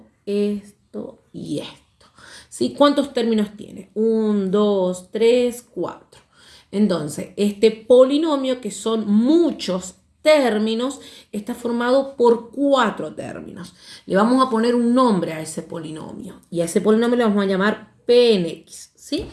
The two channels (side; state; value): both; identical; correlation 1.00